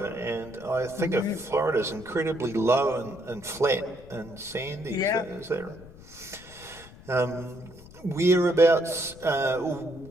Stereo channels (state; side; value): noise; left; rumble, 19 dB below the sound